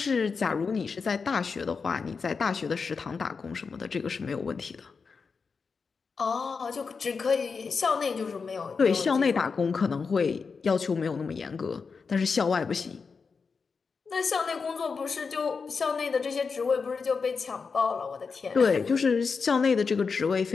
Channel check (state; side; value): quieter; right; 5.1 dB